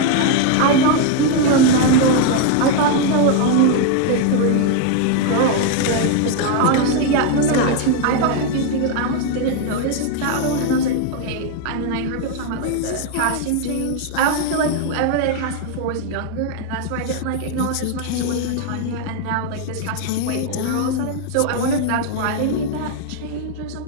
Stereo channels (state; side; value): different; both; correlation 0.01